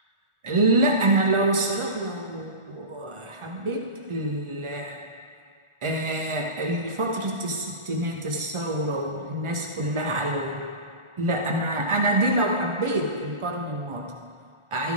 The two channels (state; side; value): late; left; 1.4 ms